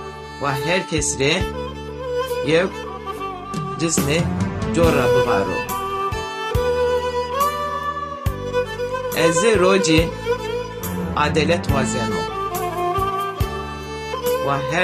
Wa herkes rê yew cismê cora bivaro. Ez rocî adalet wazeno. Wa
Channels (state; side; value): identical; both; correlation 1.00